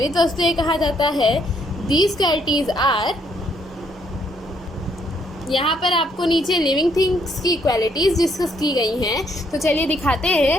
वस्तुएं कहा जाता है। दीज क्वालिटीज़ आर, यहाँ पर आपको नीचे लिविंग थिंग्स की क्वालिटीज़ डिस्कस की गई हैं। तो चलिए दिखाते हैं।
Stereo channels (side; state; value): both; normal; correlation 0.70